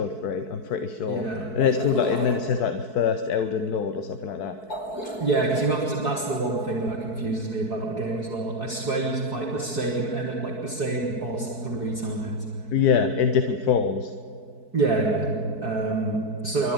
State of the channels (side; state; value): right; late; 4.6 ms